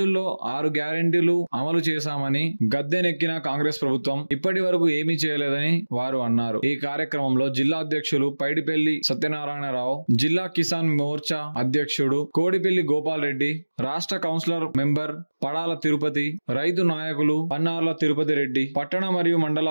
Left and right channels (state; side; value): inverted; both; correlation -1.00